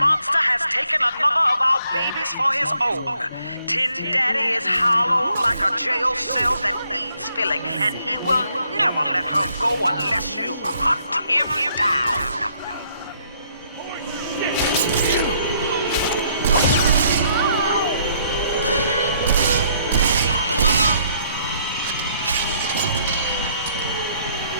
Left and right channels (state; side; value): inverted; both; correlation -0.68